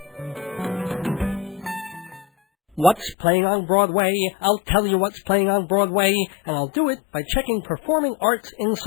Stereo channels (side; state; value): right; drops out; at 3.2 s